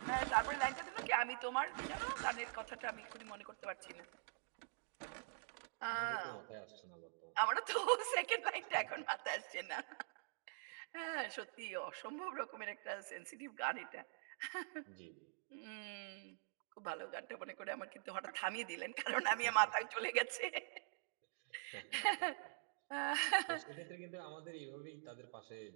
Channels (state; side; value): silent; left; digital silence